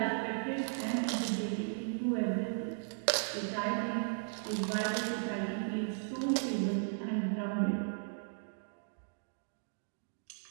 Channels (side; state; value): left; silent; digital silence